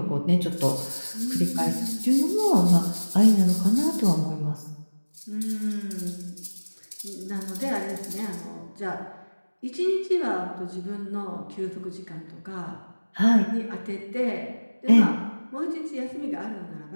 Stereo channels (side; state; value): both; inverted; correlation -1.00